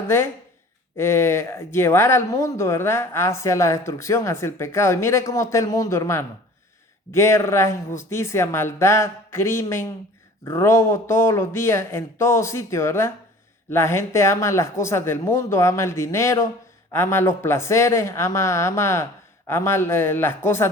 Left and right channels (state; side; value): normal; both; correlation 0.46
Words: de llevar al mundo, ¿verdad? Hacia la destrucción, hacia el pecado. Y mire cómo está el mundo, hermano. Guerra, injusticia, maldad, crimen, robo todos los días, en todo sitio, ¿verdad? La gente ama las cosas del mundo, ama el dinero, ama los placeres, ama las